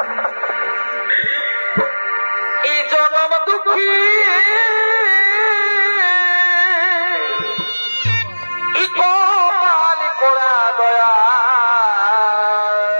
এই জনম দুঃখী কপাল পোড়া দয়া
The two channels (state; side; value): inverted; both; correlation -1.00